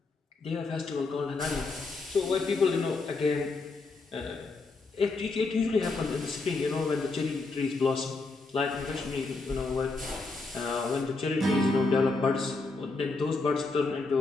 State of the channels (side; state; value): right; quieter; 3.6 dB